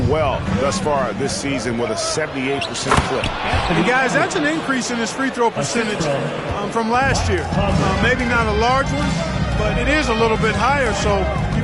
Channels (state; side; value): identical; both; correlation 1.00